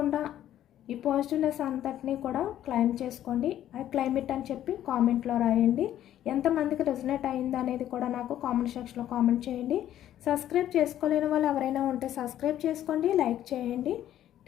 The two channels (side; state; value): right; quieter; 11.9 dB